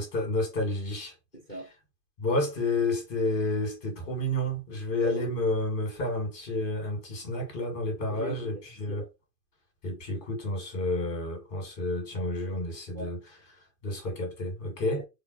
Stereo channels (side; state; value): right; late; 2.5 ms